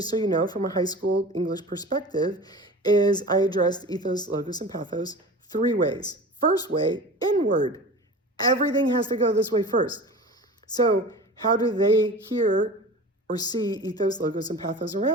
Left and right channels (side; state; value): both; normal; correlation 0.36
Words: so you know, from a high school English perspective, is I addressed ethos, logos, and pathos 3 ways. First way, inward. Everything has to go this way first. So how do they hear or see ethos, logos, and pathos